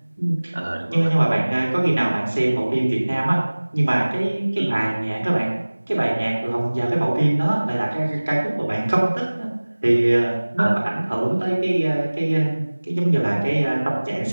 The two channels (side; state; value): both; inverted; correlation -1.00